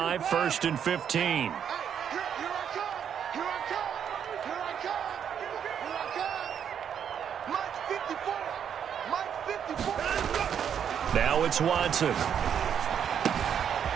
1st and 15. Now it's Watson.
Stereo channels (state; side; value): quieter; left; 8.4 dB